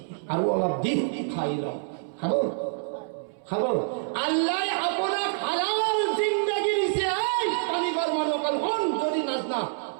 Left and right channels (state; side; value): silent; left; 60 dB below the other